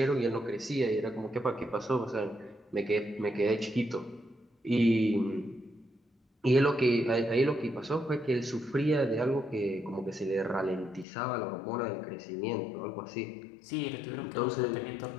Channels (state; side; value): drops out; right; at 11.1 s